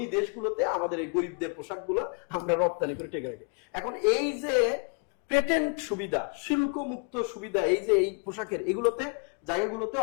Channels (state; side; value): quieter; right; 38.8 dB